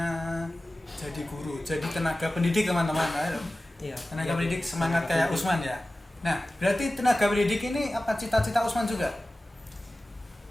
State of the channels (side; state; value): both; normal; correlation 0.96